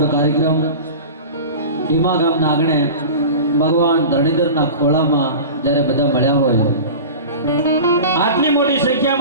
કાર્યક્રમ ભીમા ગામના આંગણે ભગવાન ધરણીધરના ખોળામાં જ્યારે બધા મળ્યા હોય, આટલી મોટી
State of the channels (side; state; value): both; inverted; correlation -0.33